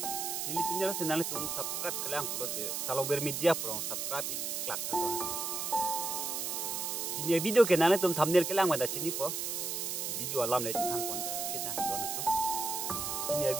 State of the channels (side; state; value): right; noise; hiss, 2 dB below the sound